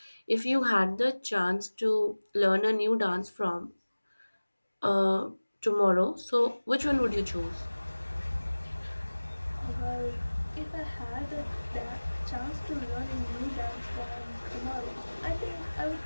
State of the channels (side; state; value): both; inverted; correlation -1.00